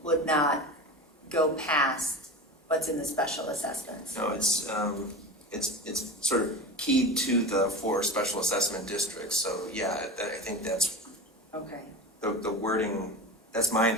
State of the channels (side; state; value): both; normal; correlation 0.28